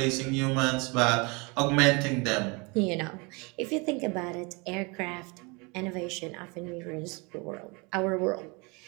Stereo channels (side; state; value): left; quieter; 29.0 dB